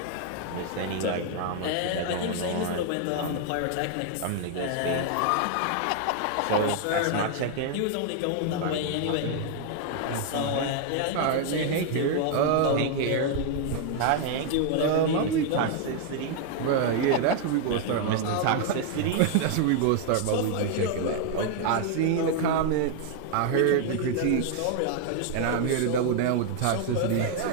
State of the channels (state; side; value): different; both; correlation 0.00